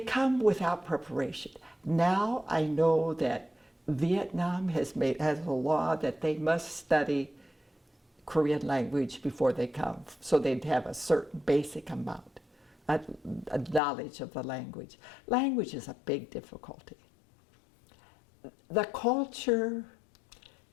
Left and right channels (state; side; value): drops out; right; at 13.8 s